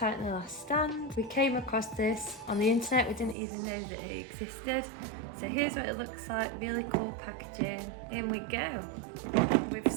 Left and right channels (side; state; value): left; drops out; at 3.4 s